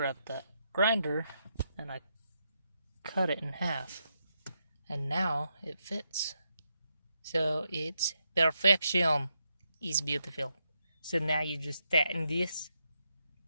that grinder and I cut it in half, and now it fits. So it's perfection. It's beautiful. So now you just tighten this,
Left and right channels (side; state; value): both; inverted; correlation -0.82